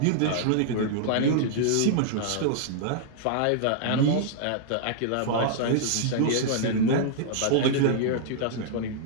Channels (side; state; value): both; different; correlation -0.01